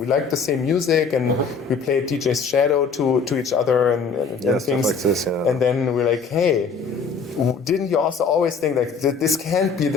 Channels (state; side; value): quieter; right; 5.1 dB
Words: liked the same music, and we played DJ's Shadow to each other and things like this. Yeah. And then we're like, hey, didn't you also always think like this can't be